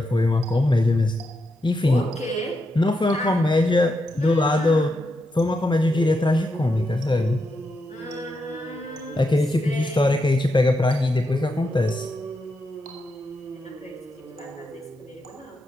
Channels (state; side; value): normal; both; correlation 0.84